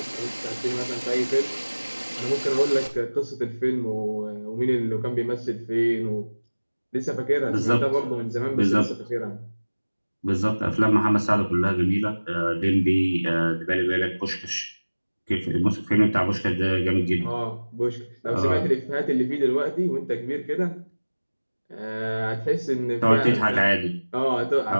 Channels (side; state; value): both; inverted; correlation -1.00